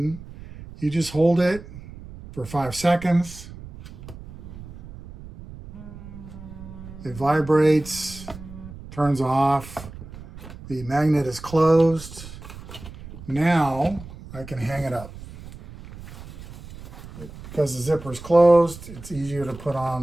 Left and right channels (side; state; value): right; noise; rumble, 15 dB below the sound